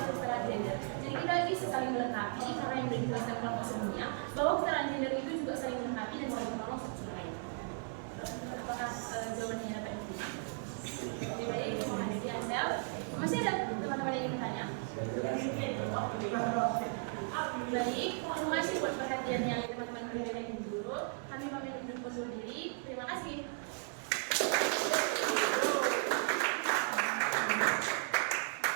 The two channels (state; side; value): silent; left; 54 dB below the other